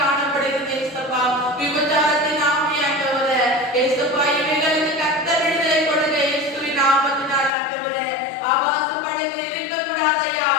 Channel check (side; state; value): right; drops out; at 7.5 s